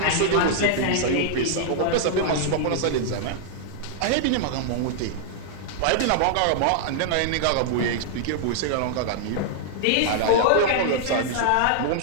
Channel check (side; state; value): both; different; correlation -0.01